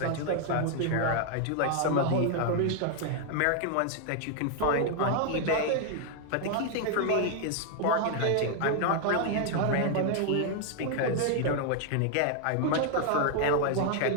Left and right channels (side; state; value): both; different; correlation 0.00